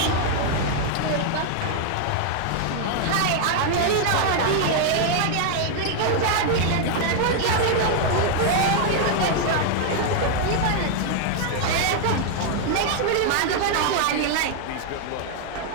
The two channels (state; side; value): different; both; correlation 0.00